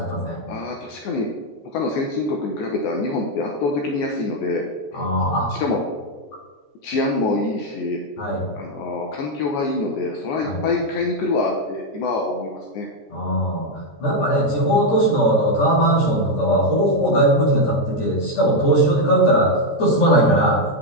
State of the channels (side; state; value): right; late; 14 ms